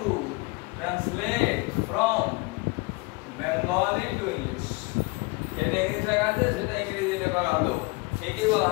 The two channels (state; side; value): quieter; right; 25.8 dB